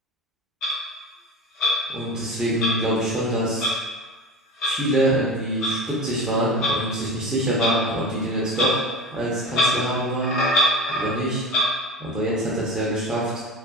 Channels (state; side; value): normal; both; correlation 0.31